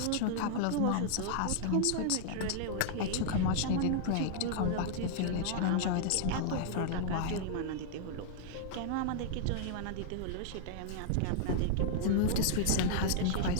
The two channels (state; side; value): different; both; correlation -0.01